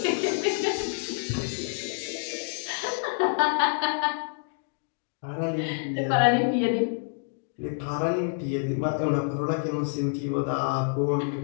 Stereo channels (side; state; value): right; silent; digital silence